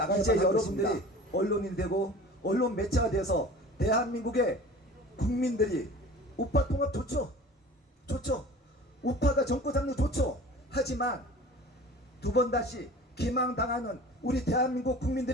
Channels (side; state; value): both; normal; correlation 0.41